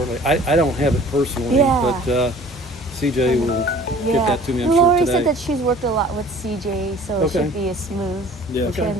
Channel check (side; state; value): both; normal; correlation 0.48